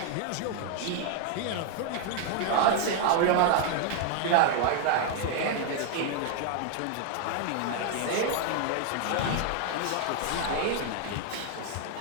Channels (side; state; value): both; different; correlation 0.00